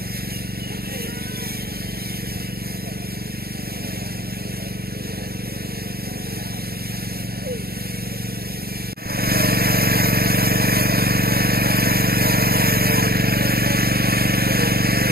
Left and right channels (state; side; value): late; left; 0.45 ms